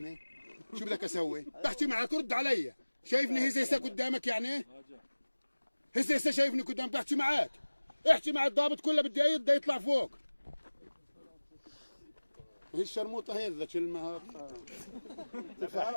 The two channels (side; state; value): both; inverted; correlation -1.00